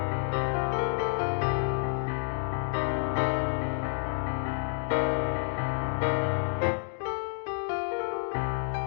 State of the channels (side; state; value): right; silent; digital silence